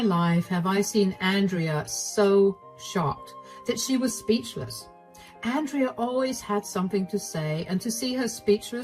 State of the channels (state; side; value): identical; both; correlation 1.00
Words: life have I seen Andrea so shocked that she was speechless. Andrea always had something to say, and to see her